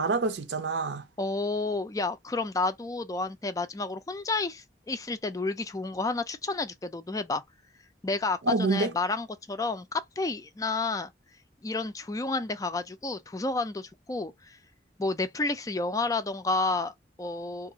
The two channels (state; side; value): normal; both; correlation 0.29